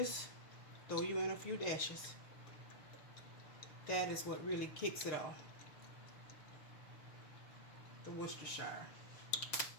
throw you in a few dashes. That is what really kicks it off. The Worcestershire.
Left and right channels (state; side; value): late; right; 6.5 ms